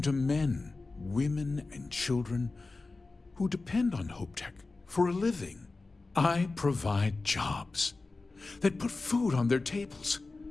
to men, women, and children who depend on HopeTech for a living. I provide jobs that put food on their tables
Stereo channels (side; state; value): right; quieter; 3.6 dB